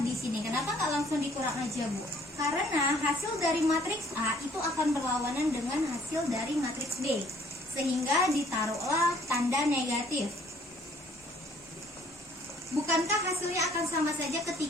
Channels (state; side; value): normal; both; correlation 0.60